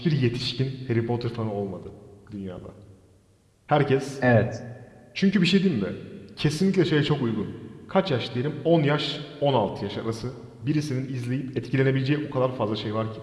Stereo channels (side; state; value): both; identical; correlation 1.00